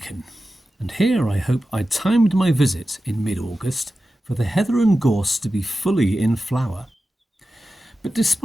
and here I hope I timed my visit in mid-August for the heather and gorse to be fully in flower. But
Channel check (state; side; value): normal; both; correlation 0.93